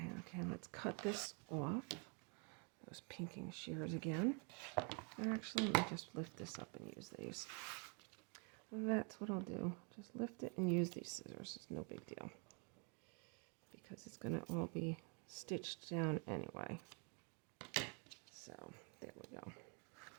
let's cut this off. Those pinking shears again. Actually, let me just lift this up and use these. That's what I'll do. Just lift it and use these scissors. It's no big deal, because it's going to all be stitched down anyway. So, there we go.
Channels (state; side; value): quieter; left; 35.1 dB